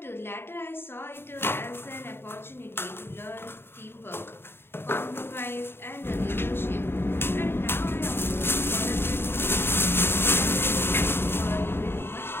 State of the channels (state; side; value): late; right; 0.11 ms